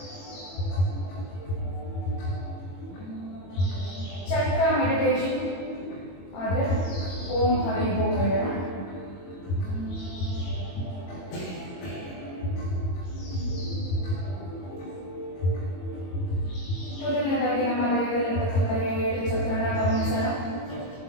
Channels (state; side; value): late; right; 22 ms